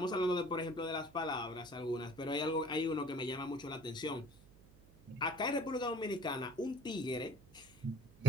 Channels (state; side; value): noise; right; hum, 25 dB below the sound